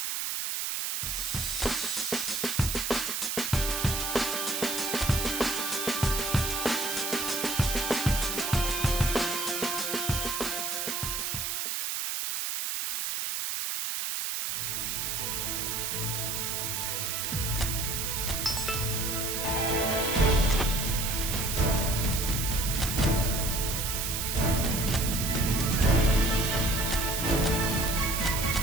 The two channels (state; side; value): noise; right; hiss, 1 dB below the sound